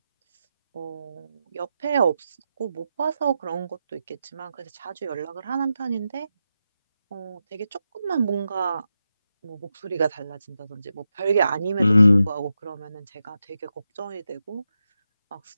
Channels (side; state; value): both; inverted; correlation -0.88